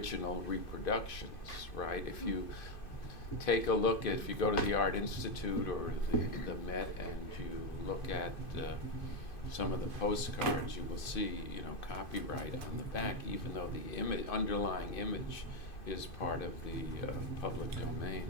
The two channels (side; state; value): right; late; 2.5 ms